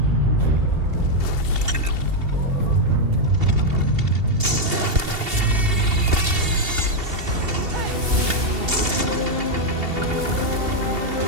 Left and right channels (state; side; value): late; left; 2.7 ms